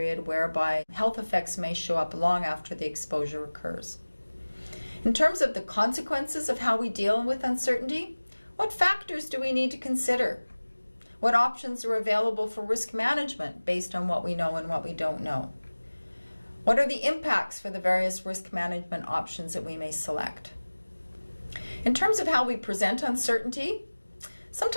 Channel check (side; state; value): both; inverted; correlation -1.00